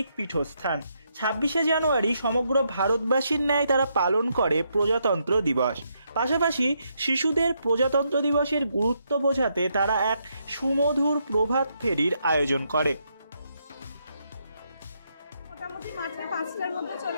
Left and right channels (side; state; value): both; inverted; correlation -0.77